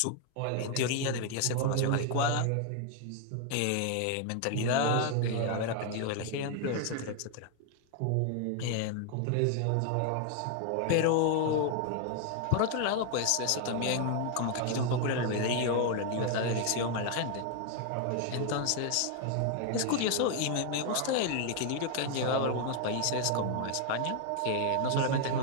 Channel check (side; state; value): both; different; correlation 0.00